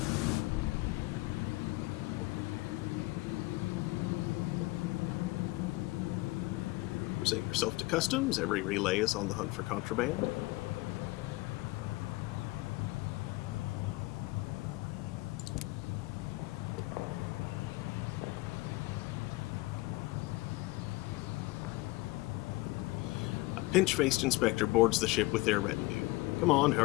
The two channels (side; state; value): right; quieter; 21.5 dB